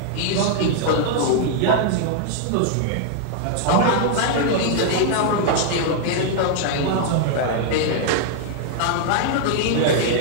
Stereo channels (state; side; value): different; both; correlation 0.00